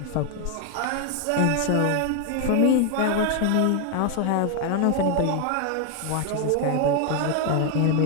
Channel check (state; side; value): different; both; correlation 0.01